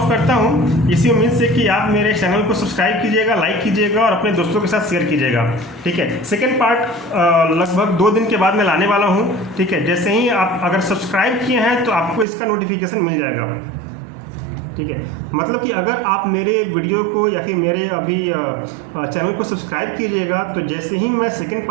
करता हूँ इसी उम्मीद से कि आप मेरे चैनल को सब्सक्राइब कीजिएगा, लाइक कीजिएगा और अपने दोस्तों के साथ शेयर कीजिएगा। ठीक है, सेकंड पार्ट लगभग 2 दिन के बाद मैं लाने वाला हूँ। ठीक है, जैसे ही आप अगर सब्सक्राइब किए हैं तो आपको इसका नोटिफिकेशन मिल जाएगा। ठीक है, मतलब कि अगर आप मेरे वीडियो को या फिर मेरे अभी चैनल को सब्सक्राइब कीजिएगा तो जैसे ही मैं सेकंड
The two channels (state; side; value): drops out; left; at 12.2 s